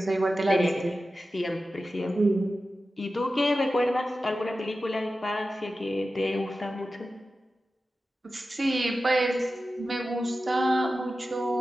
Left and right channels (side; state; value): both; normal; correlation 0.93